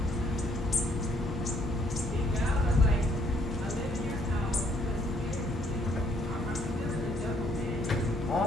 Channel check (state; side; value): normal; both; correlation 0.67